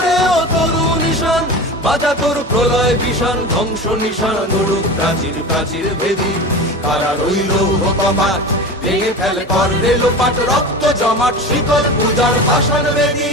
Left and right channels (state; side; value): normal; both; correlation 0.30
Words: ও তরু নিশান বাজা তোর প্রলয় বিষান, ধ্বংস নিশান উড়ুক প্রাচীর প্রাচীর ভেদী। কারার ওই লৌহ কপাট ভেঙে ফেল কর রে লোপাট, রক্ত জমাট শিকল পূজার পাষাণ বেদী।